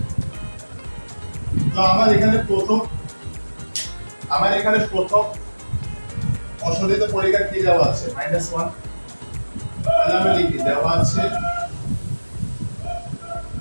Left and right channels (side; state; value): both; inverted; correlation -1.00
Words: তো আমার এখানে প্রথম অশোধিত পরীক্ষা কি দেওয়া আছে? -1। তাহলে আমি লিখি দেওয়া আছে